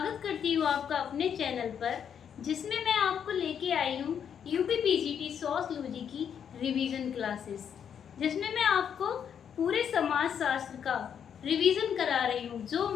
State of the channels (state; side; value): quieter; right; 8.1 dB